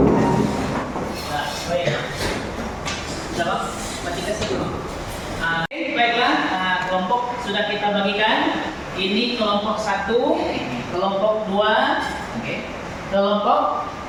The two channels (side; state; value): both; identical; correlation 1.00